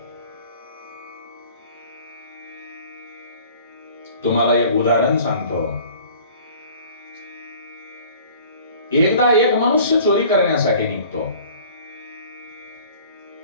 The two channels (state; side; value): inverted; both; correlation -0.49